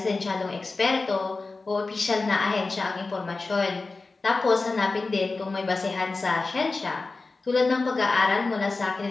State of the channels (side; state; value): right; quieter; 3.7 dB